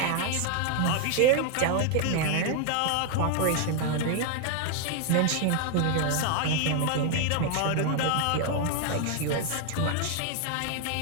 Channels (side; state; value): both; different; correlation 0.00